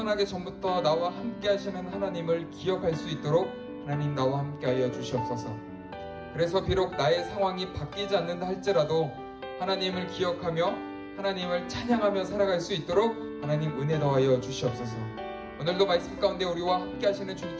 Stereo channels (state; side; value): identical; both; correlation 1.00